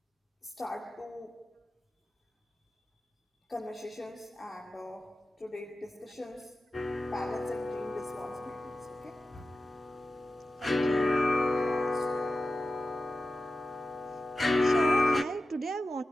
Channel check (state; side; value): normal; both; correlation 0.93